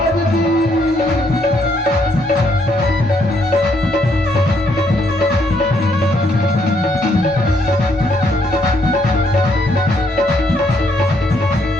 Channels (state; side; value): normal; both; correlation 0.71